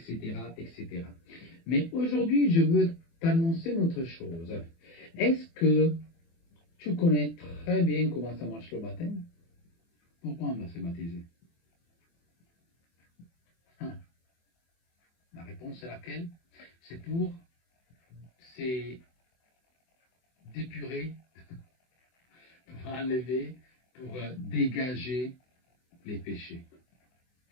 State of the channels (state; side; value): late; right; 24 ms